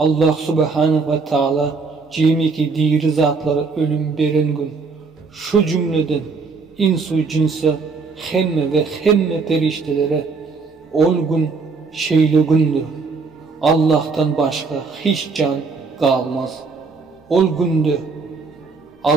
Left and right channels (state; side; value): quieter; left; 4.5 dB